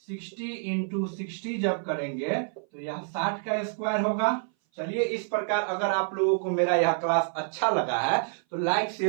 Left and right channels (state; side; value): silent; left; 57 dB below the other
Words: 60 इंटू 60 जब करेंगे तो यह 60 का स्क्वायर होगा। चलिए, इस प्रकार अगर आप लोगों को मेरा यह क्लास अच्छा लगा है तो लाइक